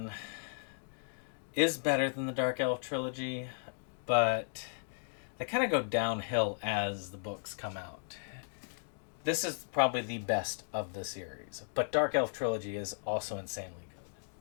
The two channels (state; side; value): silent; right; digital silence